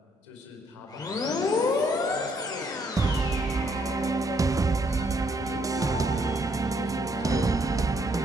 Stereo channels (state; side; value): normal; both; correlation 0.70